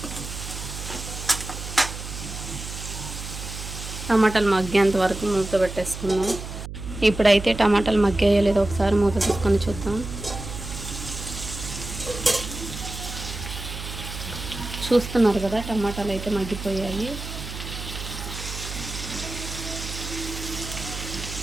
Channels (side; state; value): right; noise; hum, 9 dB below the sound